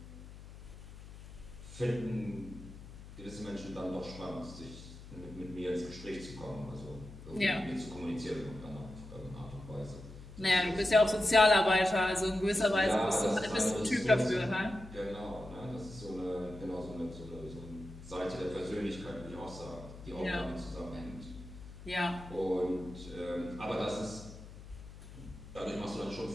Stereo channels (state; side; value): noise; left; hum, 15 dB below the sound